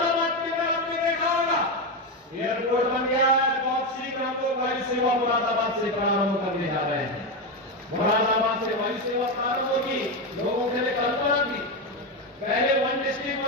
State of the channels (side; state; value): both; normal; correlation 0.12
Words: के अंदर आपने देखा होगा एयरपोर्ट बन गया है। बहुत शीघ्र हम लोग वायु सेवा मुरादाबाद से प्रारंभ करने जा रहे हैं। मुरादाबाद से वायु सेवा प्रारंभ होगी। लोगों के लिए कल्पना थी पहले 1 डिस्ट्रिक्ट